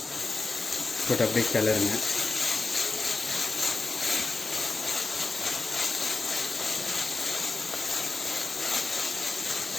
போட்டு அப்படியே கிளறுங்க.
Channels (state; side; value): quieter; right; 3.7 dB